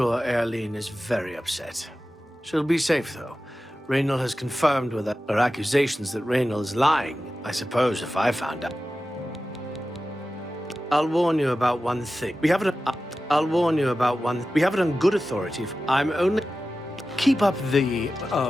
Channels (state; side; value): normal; both; correlation 0.94